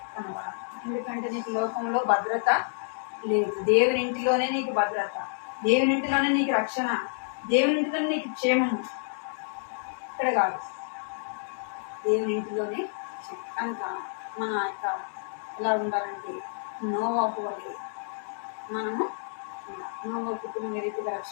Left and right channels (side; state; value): right; silent; digital silence